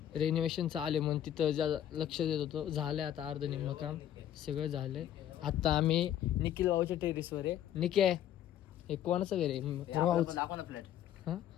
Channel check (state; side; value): quieter; right; 11.1 dB